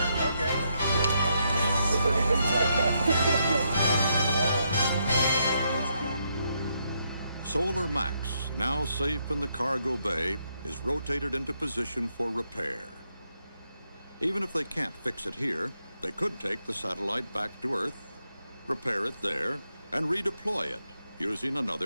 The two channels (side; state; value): both; inverted; correlation -0.78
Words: Okay. Solar Max, now safe in the cargo bay, is rotated into position for repair. Even if they can't fix it here, they could take the satellite back to Earth, repair it there, and redeploy it using